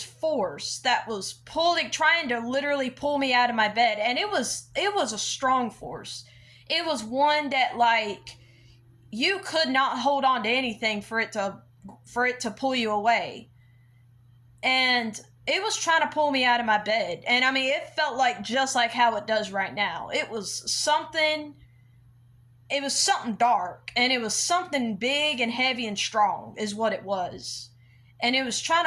force that was trying to literally pull me out of my bed. And it was a strong force. It was one that, like, you could not hold on to anything for it to pull you away. And it was trying to pull me out of my bed. And I mean, it felt like just like how it does right now. It was something dark, and it was something big and heavy and strong is what it was. And it was trying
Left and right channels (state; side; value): identical; both; correlation 1.00